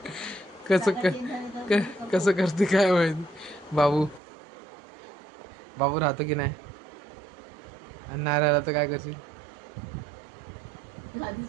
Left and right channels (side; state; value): left; drops out; at 4.2 s